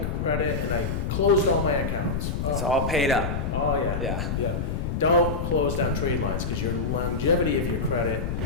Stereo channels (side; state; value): left; noise; rumble, 2 dB below the sound